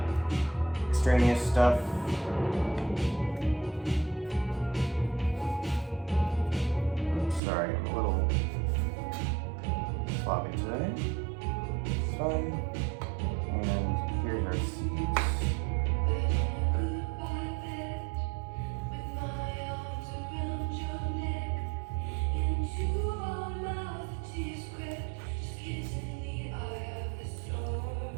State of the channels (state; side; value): drops out; left; at 7.4 s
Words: extraneous stuff. Oops, sorry, I'm a little sloppy today. It's fine. And here's our seeds.